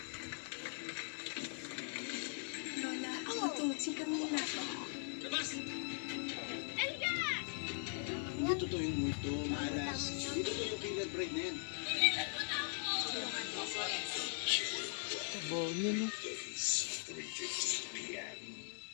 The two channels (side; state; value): right; silent; 51 dB below the other